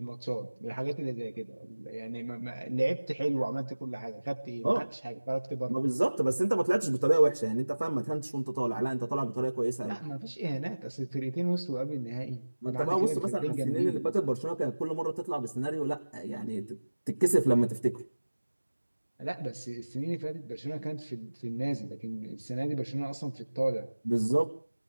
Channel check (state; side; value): inverted; both; correlation -1.00